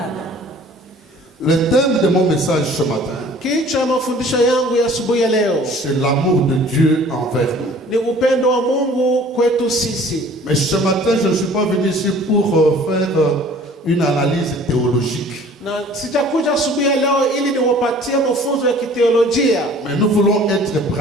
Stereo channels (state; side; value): normal; both; correlation 0.50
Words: le thème de mon message ce matin, Kichwa mafundisho yangu ya asubuhi ya leo c'est l'amour de Dieu envers nous. ni upendo wa Mungu kwetu sisi. Mais ce matin, je ne suis pas venu ici pour faire une analyse théologique. Na sitakuja asubuhi ya leo ili niwapatie mafunzo ya kiteolojia, Mais nous voulons être